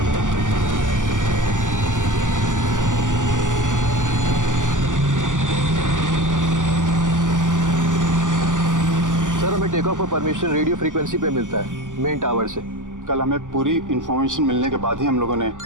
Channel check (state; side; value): late; left; 0.87 ms